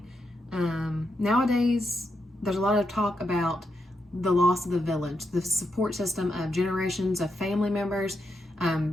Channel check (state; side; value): normal; both; correlation 0.83